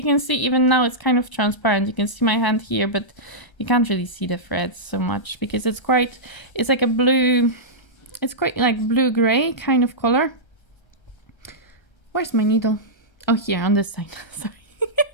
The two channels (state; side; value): late; right; 1.3 ms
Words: can see, even now it's kind of transparent. You can see my hand here, but you can't really see the threads so much because it's like a blue, it's quite like blue-gray kind of color. Where's my needle? Oh, here on this side. Sorry.